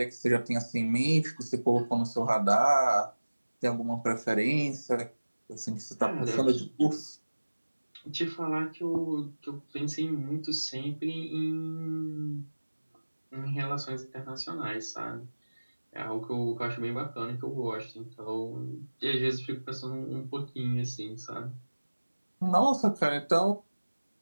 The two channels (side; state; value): both; inverted; correlation -1.00